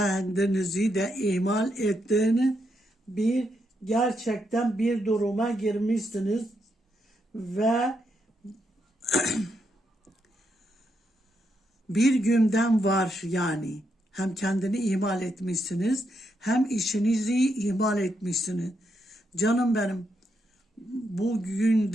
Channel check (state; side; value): normal; both; correlation 0.80